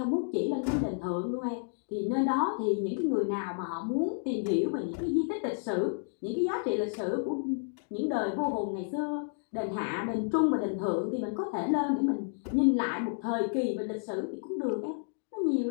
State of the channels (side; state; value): right; silent; digital silence